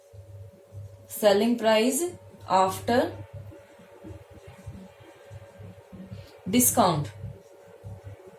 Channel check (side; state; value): both; identical; correlation 1.00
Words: सेलिंग प्राइस आफ्टर डिस्काउंट